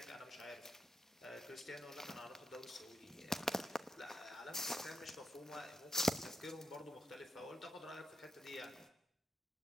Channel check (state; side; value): normal; both; correlation 0.84